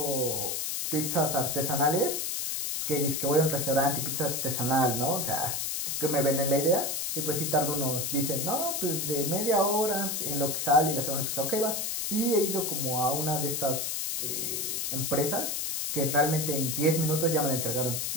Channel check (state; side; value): noise; left; hiss, 1 dB below the sound